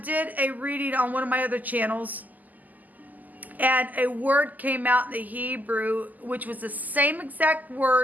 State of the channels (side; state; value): left; late; 0.082 ms